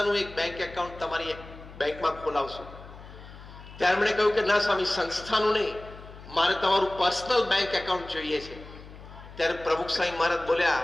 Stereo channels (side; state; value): left; noise; hum, 17 dB below the sound